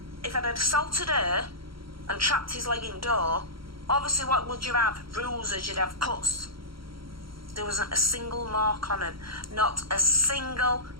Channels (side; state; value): left; late; 0.74 ms